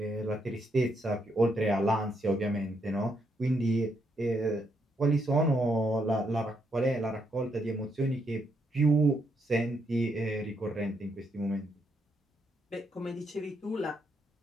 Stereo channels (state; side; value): normal; both; correlation 0.77